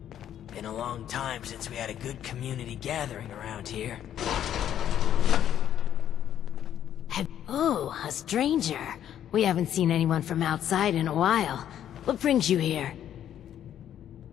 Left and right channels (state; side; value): quieter; right; 10.5 dB